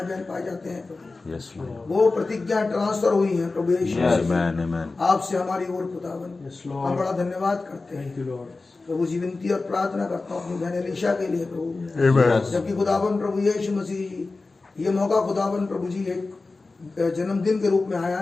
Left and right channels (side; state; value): right; quieter; 3.6 dB